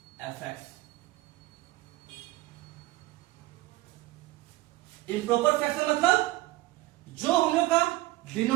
fx। Improper fraction मतलब जो हम लोग का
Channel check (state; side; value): quieter; left; 18.1 dB